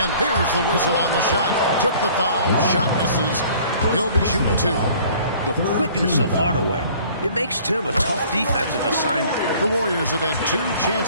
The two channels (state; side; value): inverted; both; correlation -0.52